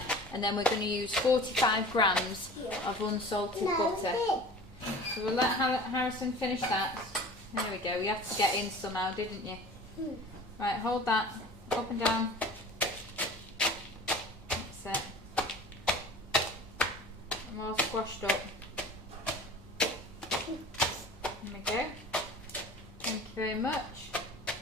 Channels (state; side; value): normal; both; correlation 0.41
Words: and then we're going to use 45 grams of unsalted butter. So we'll let Harrison finish that. There we go. You had to get in somehow, didn't you? Right, hold that up and down. That's it. I'm all squashed up. There we go. Thank you very much.